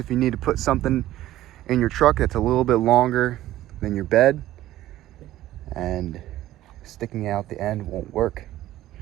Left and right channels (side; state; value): left; quieter; 14.5 dB